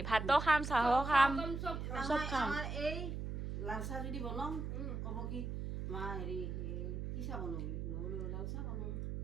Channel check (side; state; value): right; noise; hum, 4 dB below the sound